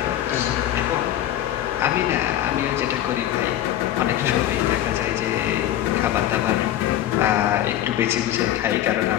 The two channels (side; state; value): right; quieter; 12.3 dB